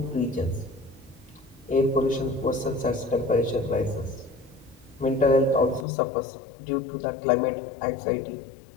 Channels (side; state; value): right; drops out; at 5.9 s